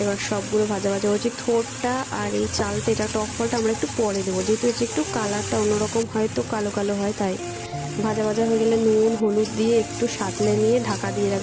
এবার সবগুলো ভাজা ভাজা হচ্ছে। থোড়টা আর এই চালটা, এটা টক ফলটা আমরা একটু পরে দেবো, যেহেতু হচ্ছে একটু কালারটা অন্যরকম হয়, তো কালো কালো হয়, তাই ভাজা ভাজা হয়ে গেলে নুন হলুদ দিয়ে একটু সাঁতলে নিয়ে ঢাকা দিয়ে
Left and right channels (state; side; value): identical; both; correlation 1.00